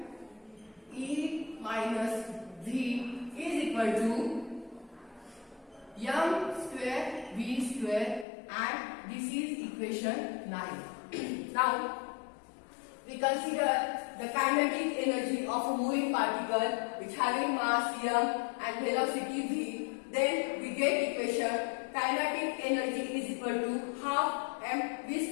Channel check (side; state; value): right; drops out; at 8.2 s